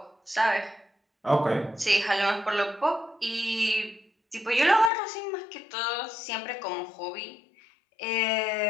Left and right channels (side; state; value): right; drops out; at 4.9 s